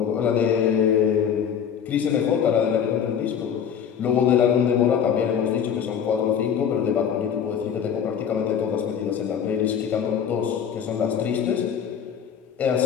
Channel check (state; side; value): quieter; right; 8.0 dB